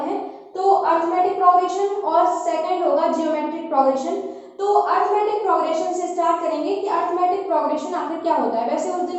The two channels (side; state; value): both; identical; correlation 1.00